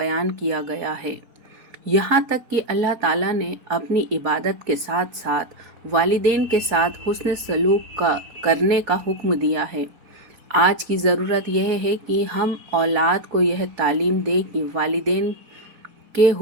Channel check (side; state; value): left; late; 3.9 ms